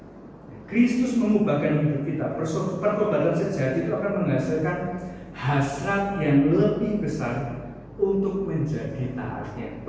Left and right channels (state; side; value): identical; both; correlation 1.00